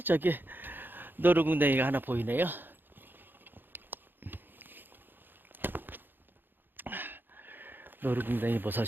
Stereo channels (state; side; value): late; left; 0.095 ms